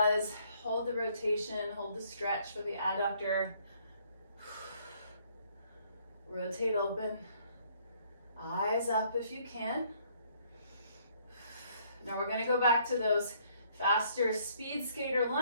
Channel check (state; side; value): inverted; both; correlation -0.65